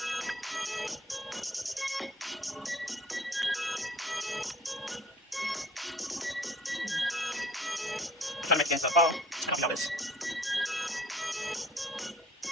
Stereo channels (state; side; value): normal; both; correlation 0.51